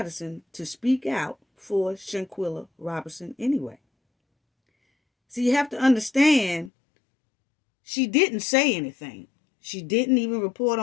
to speak out for Shanquella Robinson anyway. So you have to understand, she didn't say anything. She didn't even report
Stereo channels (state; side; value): drops out; right; at 6.7 s